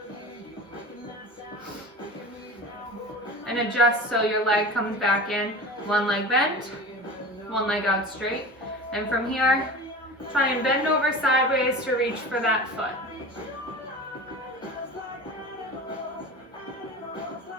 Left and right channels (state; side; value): normal; both; correlation 0.33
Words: and adjust so your leg comes back in, one leg bent, one leg out straight. And from here, try and bend over sideways to reach for that foot.